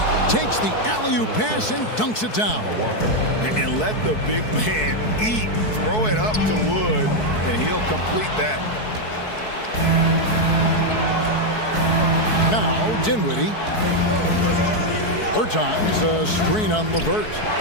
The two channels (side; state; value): right; late; 4.6 ms